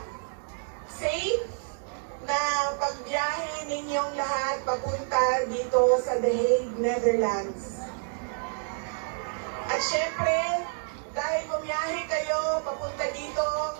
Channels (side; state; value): left; silent; 59 dB below the other